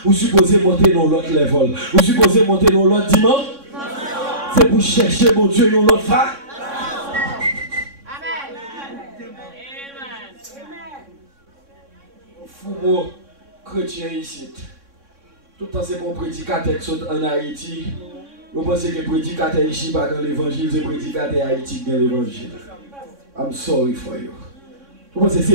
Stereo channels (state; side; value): late; left; 3.6 ms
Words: vous supposez monter dans l'autre level. Vous supposez monter dans l'autre dimension. C'est pour chercher mon Dieu dans l'autre phase. Fou chrétien ici. Tout le temps c'est pour prédicateur qui sont en Haïti. Vous pensez que prédicateur ici pas dans l'évangile, c'est prédicateur Haïti qui dans l'évangile. I'm sorry for you. Vous pensez que